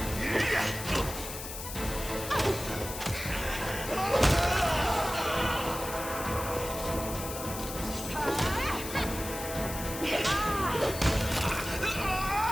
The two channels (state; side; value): noise; left; hiss, 8 dB below the sound